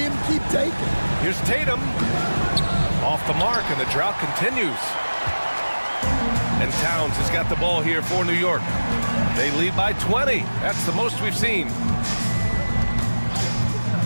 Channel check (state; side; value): inverted; both; correlation -1.00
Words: keep taking. Here's Tatum. Off the mark, and the drought continues. And Towns has got the ball here for New York. They lead by 20. That's the most we've seen.